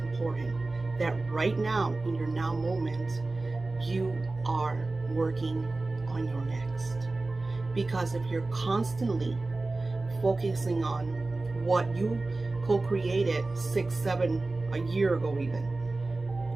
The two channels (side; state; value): left; quieter; 3.3 dB